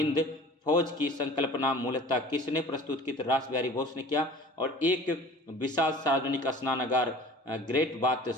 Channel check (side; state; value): both; normal; correlation 0.44